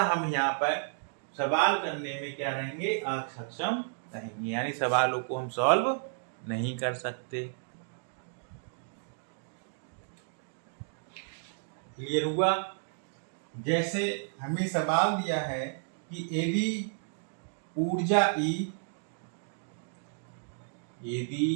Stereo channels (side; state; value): left; silent; digital silence